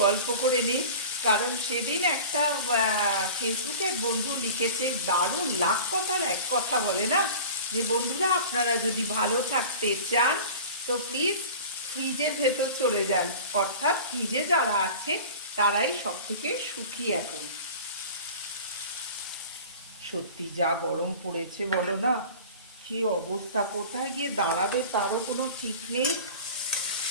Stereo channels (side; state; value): both; inverted; correlation -0.38